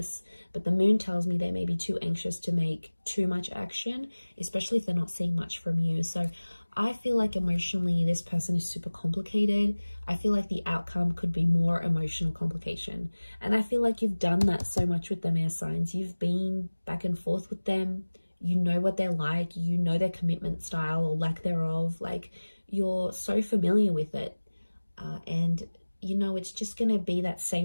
But the Moon tells me they may be too anxious to make too much action, especially if they're not seeing much from you. So I feel like emotionally, this person is super complicated. I feel like the outcome could be more emotional complication. And I feel like you've done that so much with them, air signs. You've been back and forth with them. You know what they're like. You know their commitment style or lack thereof. Like, you're so familiar with it. And, you know, it's just going to be that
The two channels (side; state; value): both; inverted; correlation -1.00